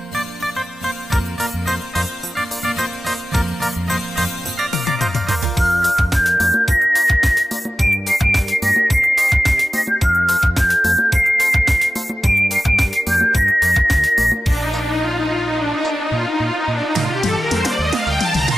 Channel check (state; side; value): normal; both; correlation 0.94